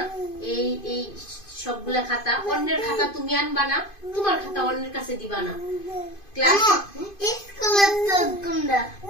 এই এই সবগুলা খাতা, অন্যের খাতা তুমি আনবা না, তোমার খাতা অন্যের কাছে দিবা না। ক্লাস স্কুলের তো কোনটা?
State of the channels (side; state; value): right; late; 2.5 ms